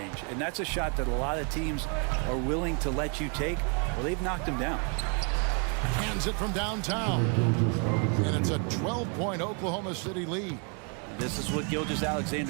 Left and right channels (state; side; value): quieter; left; 38.1 dB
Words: And that's a shot that a lot of teams are willing to let you take. Well, they've knocked them down. Hands it from downtown. And it's a 12-point Oklahoma City lead. This is what Gilgeous